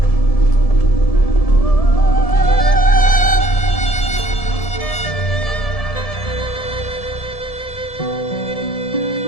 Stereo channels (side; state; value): right; late; 1.7 ms